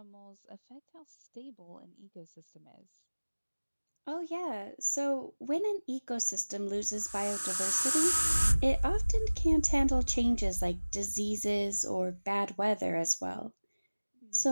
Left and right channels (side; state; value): both; inverted; correlation -1.00